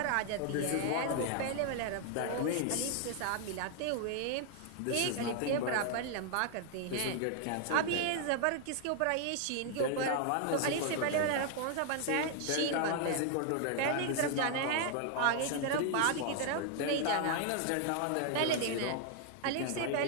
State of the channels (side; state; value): both; different; correlation 0.00